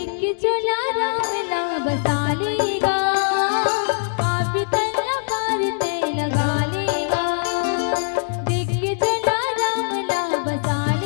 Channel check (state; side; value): silent; right; digital silence